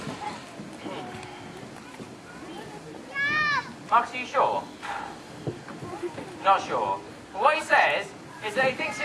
Marcus, are you sure? Not sure. Well, what he says is that he thinks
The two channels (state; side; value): identical; both; correlation 1.00